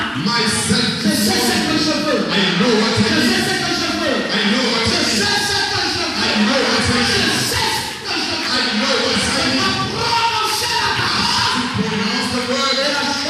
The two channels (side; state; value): both; identical; correlation 1.00